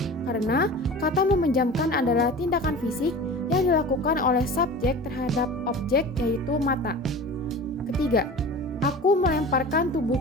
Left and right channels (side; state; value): both; normal; correlation 0.36